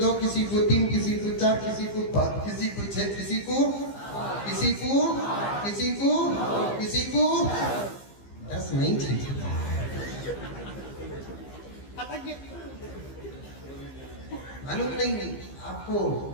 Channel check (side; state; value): right; late; 15 ms